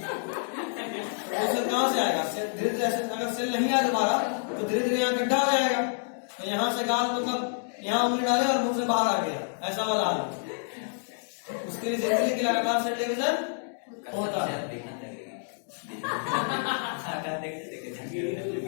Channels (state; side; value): silent; right; digital silence